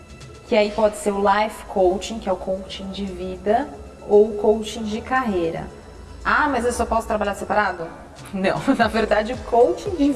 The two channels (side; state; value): both; identical; correlation 1.00